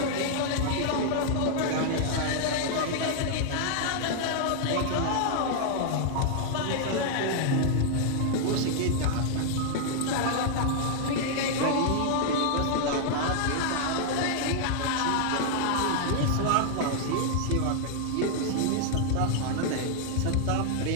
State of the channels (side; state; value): both; different; correlation 0.00